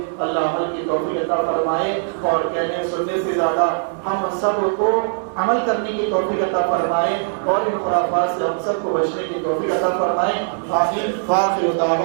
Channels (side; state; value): left; silent; digital silence